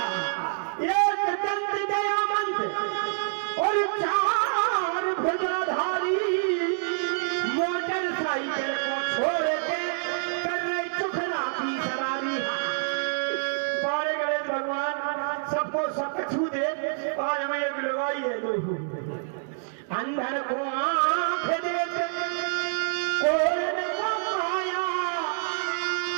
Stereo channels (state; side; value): silent; left; 60 dB below the other